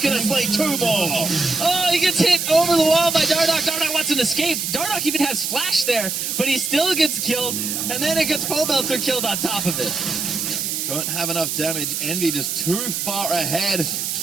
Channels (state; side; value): noise; right; hiss, 2 dB below the sound